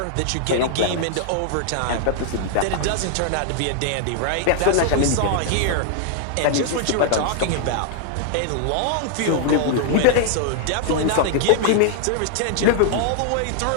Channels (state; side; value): different; both; correlation -0.01